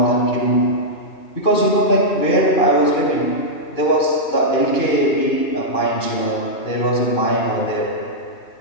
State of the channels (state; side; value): late; right; 2.5 ms